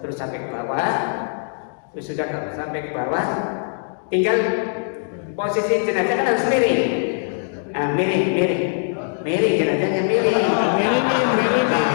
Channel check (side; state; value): right; silent; digital silence